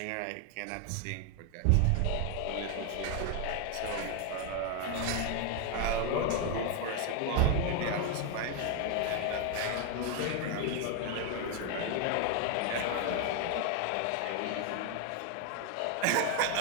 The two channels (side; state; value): both; different; correlation 0.01